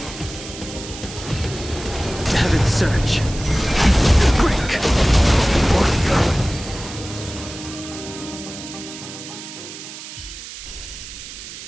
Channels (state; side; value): noise; right; hiss, 12 dB below the sound